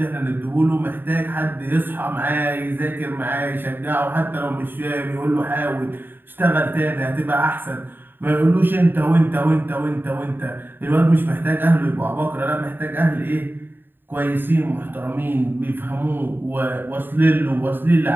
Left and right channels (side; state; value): left; late; 0.095 ms